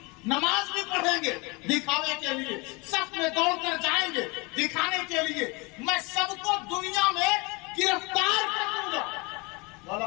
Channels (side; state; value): right; quieter; 27.1 dB